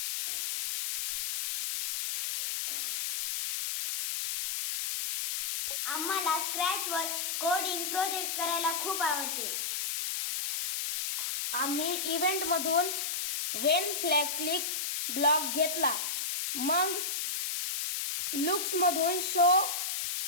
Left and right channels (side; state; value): left; noise; hiss, 1 dB below the sound